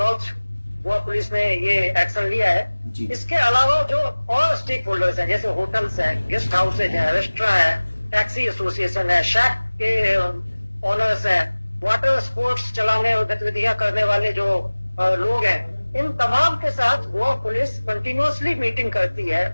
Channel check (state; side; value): inverted; both; correlation -1.00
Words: गोवा पुलिस ने ये एक्शन लिया है। इसके अलावा जो और स्टेक होल्डर्स हैं, जैसे होटल्स हैं, गेस्ट हाउसेज हैं, रेस्टोरेंट है, टैक्सी एसोसिएशन है, शैक के ओनर्स हैं, वाटर स्पोर्ट्स चलाने और गतिविधियां करने वाले जो लोग हैं, इन तमाम के साथ गोवा पुलिस कंटिन्यूअसली मीटिंग करती है।